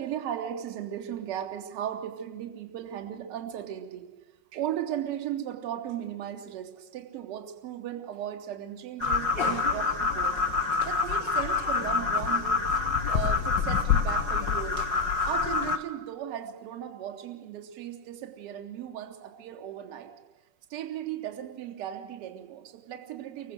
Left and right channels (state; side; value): late; left; 5.5 ms